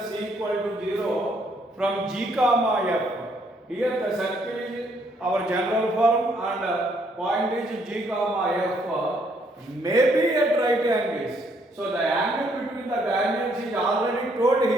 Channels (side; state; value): both; normal; correlation 0.69